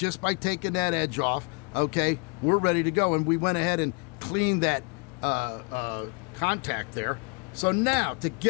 by taking that edge off. Okay, we're ready to go, and we went ahead and cleaned that contact there. So now to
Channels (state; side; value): quieter; right; 34.0 dB